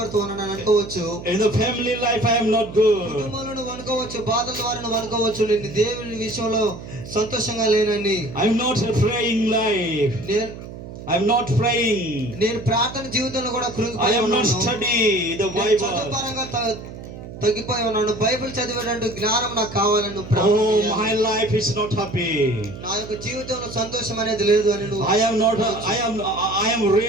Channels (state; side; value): noise; right; hum, 13 dB below the sound